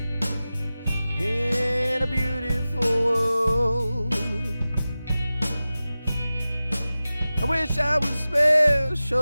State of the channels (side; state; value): both; inverted; correlation -0.96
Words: in a beautiful world. I wish I was